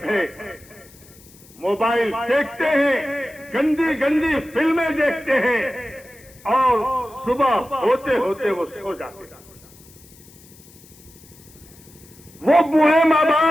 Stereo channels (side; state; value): left; noise; hiss, 24 dB below the sound